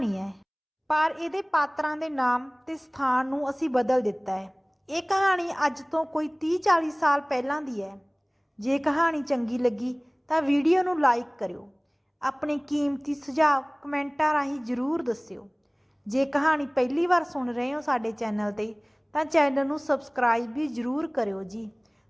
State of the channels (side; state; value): both; identical; correlation 1.00